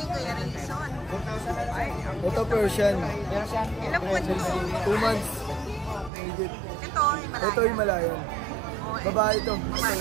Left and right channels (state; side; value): drops out; left; at 6.1 s